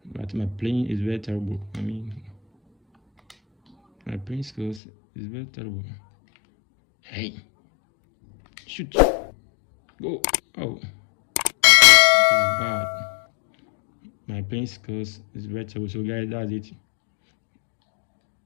But my playing is very terrible. My playing skills is very terrible. Hey, shoot, go. Oh, this is bad. My playing skills is very terrible. So guys, that's it.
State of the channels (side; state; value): right; drops out; at 4.8 s